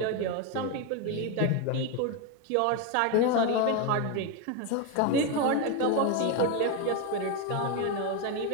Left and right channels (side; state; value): both; different; correlation 0.02